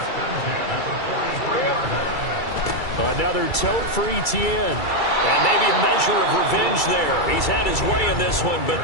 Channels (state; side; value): late; right; 2.3 ms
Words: Another tote for Etienne. And maybe a measure of revenge there. He's had his way in this one, but